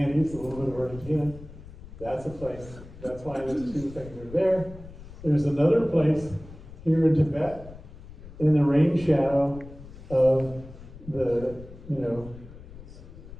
a little bit of Argentina. That's a place. That's why those 2 things are there. There's another place here in Tibet, in the rain shadow of the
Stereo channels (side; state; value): left; noise; rumble, 16 dB below the sound